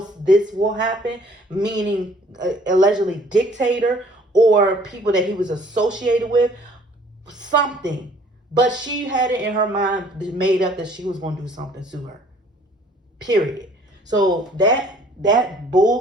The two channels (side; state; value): both; normal; correlation 0.57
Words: this will happen, meaning allegedly Dictator or people that he was associated with, something. But she had it in her mind, made up, that she was going to do something to her. Period. So that